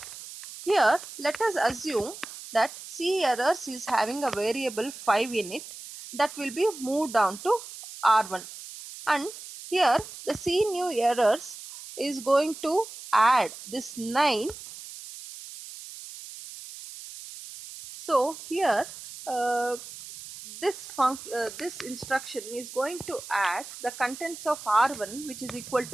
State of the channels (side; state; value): right; noise; hiss, 13 dB below the sound